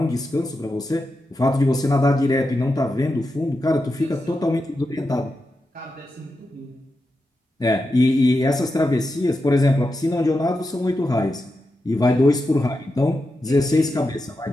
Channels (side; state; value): both; normal; correlation 0.88